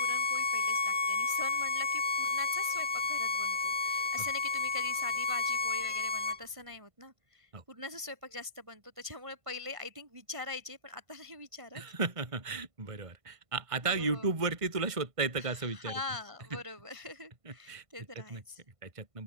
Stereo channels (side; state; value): left; late; 1.5 ms